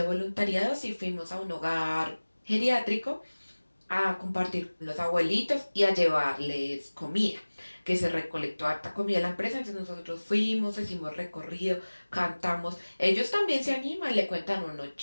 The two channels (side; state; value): both; inverted; correlation -1.00